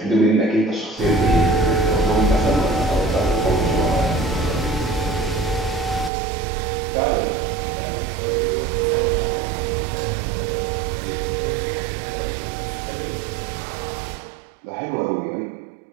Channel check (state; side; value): drops out; left; at 6.1 s